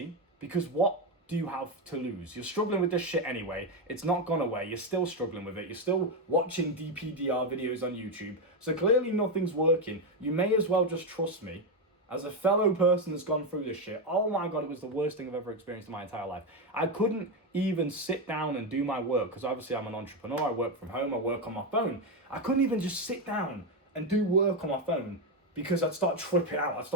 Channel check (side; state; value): both; normal; correlation 0.08